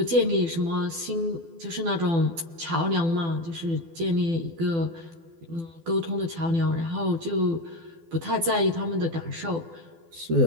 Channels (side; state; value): left; late; 12 ms